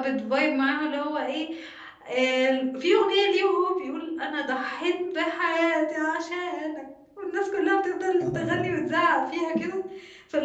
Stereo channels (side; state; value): both; identical; correlation 1.00